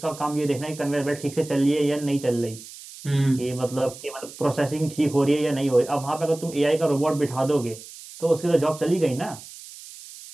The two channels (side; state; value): right; noise; hiss, 16 dB below the sound